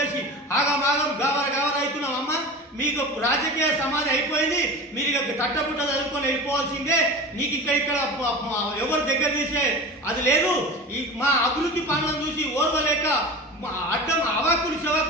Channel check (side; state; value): both; normal; correlation 0.32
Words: ఆగమాగం గావర అవుతున్నాం. అమ్మ, మీకు రాజకీయ సమాధి అయిపోయింది. మీరు ఇక తట్టబుట్ట చదువుకొని వెళ్ళిపోవాల్సిందే. నీకు ఇక్కడ ఎవరు దగ్గర తీసే అది లేదు. ఈ మా అభివృద్ధి పనులను చూసి ఓర్వలేక అడ్డం అవాకులు